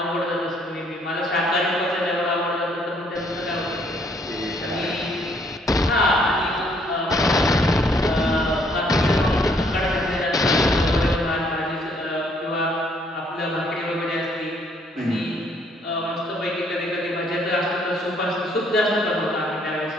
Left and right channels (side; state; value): both; normal; correlation 0.66